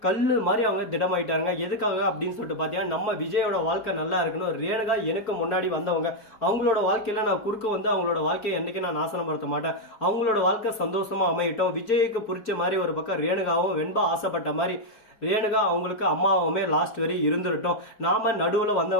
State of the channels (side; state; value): right; late; 4.5 ms